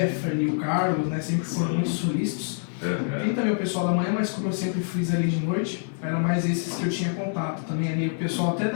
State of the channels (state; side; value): silent; right; digital silence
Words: o Carlos, né, sempre foram muito solícitos. Tem também o pessoal da manhã, mas como eu sempre fiz ali de noite, eram mais esses que eu tinha contato. Também ali o pessoal até